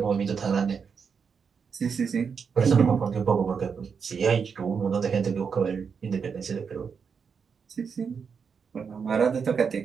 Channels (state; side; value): quieter; left; 6.2 dB